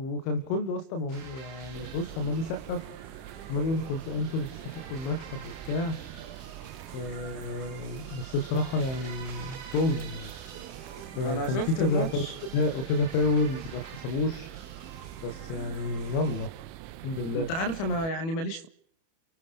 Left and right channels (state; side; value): late; right; 31 ms